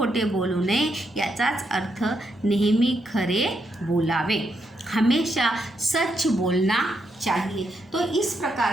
बोलू नये याचाच अर्थ नेहमी खरे बोलावे. हमेशा सच बोलना चाहिए. तो इस प्रकार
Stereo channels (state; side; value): normal; both; correlation 0.80